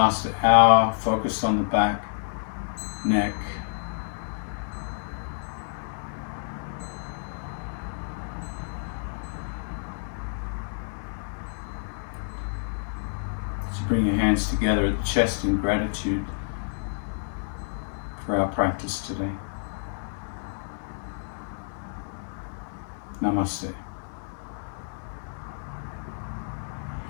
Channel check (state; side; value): silent; right; digital silence